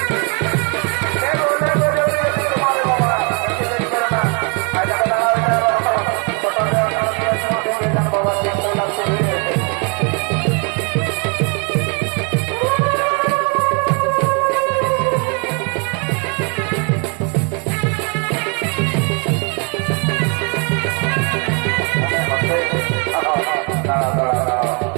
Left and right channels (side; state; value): left; quieter; 35.5 dB